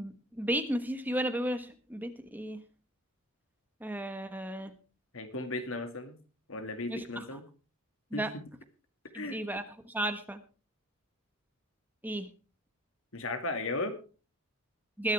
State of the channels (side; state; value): both; normal; correlation 0.45